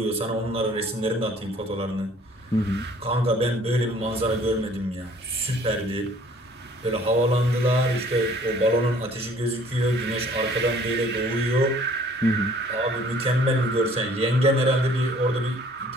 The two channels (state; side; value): normal; both; correlation 0.56